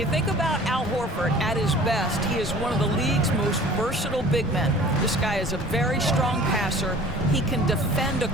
think about Al Horford at his best, he is one of the league's most versatile big men. This guy is a very strong passer. He can defend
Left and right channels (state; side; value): normal; both; correlation 0.46